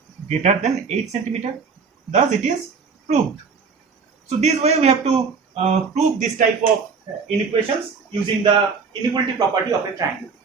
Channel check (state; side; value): quieter; left; 5.2 dB